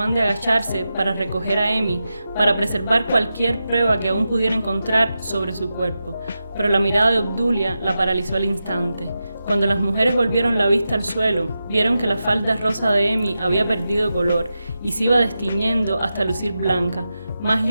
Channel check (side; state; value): both; inverted; correlation -0.90